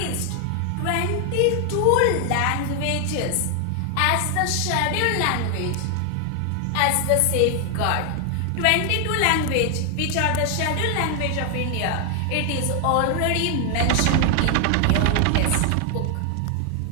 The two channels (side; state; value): both; different; correlation 0.00